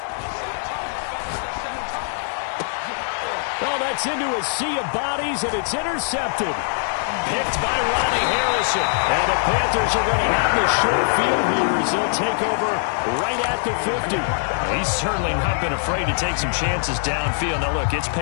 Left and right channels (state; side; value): silent; right; 64 dB below the other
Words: Oh, that's into a sea of bodies, and it's intercepted. Picked by Ronnie Harrison. And the Panthers are going to have the short field here as they'll take over right at the 50. He's certainly not been afraid to take some chances downfield. Now, look, it's